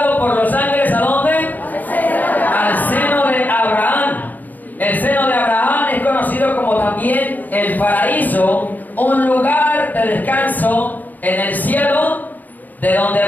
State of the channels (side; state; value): right; late; 0.084 ms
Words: por los ángeles, ¿a dónde? Al seno de Abraham. El seno de Abraham es conocido como también el paraíso, un lugar de descanso en el cielo, de donde